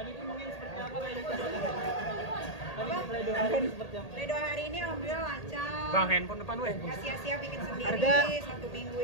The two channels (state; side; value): late; right; 1.8 ms